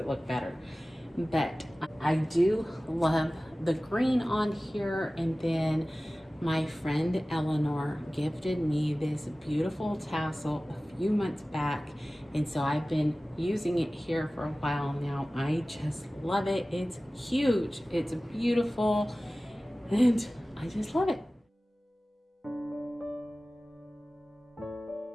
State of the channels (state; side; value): normal; both; correlation 0.97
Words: look better. But I do love the green on here, and then my friend Eleanor gifted me this beautiful tassel a few months back, and so I've been using it here for a while now. I just love it. It's huge, it's beautiful, and I just love it.